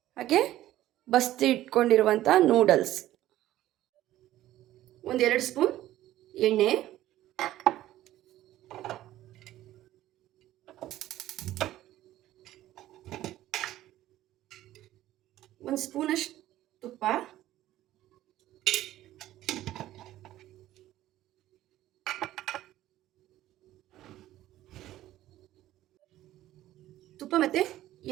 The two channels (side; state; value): left; quieter; 14.3 dB